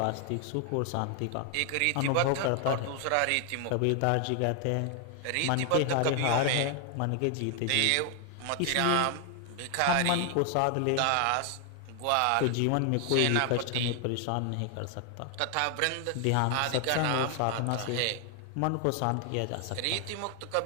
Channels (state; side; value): different; both; correlation 0.00